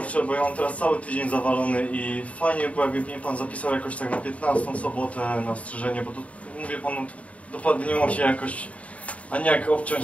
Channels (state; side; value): late; right; 0.066 ms